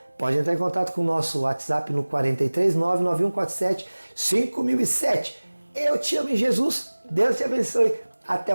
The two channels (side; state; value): both; inverted; correlation -1.00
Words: Pode entrar em contato com o nosso WhatsApp no 43 99147 5007. Eu te amo em Jesus, Deus te abençoe, até